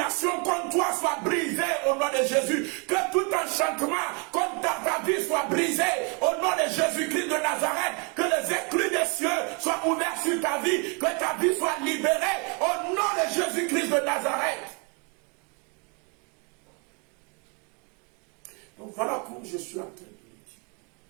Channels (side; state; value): left; quieter; 34.0 dB